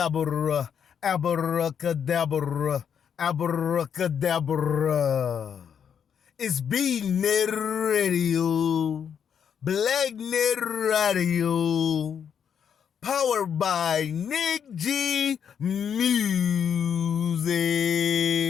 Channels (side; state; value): right; quieter; 7.8 dB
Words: abracadabra, abracadabra. It's B-Net Radio, Black-Net Radio, powered by Nick G Music.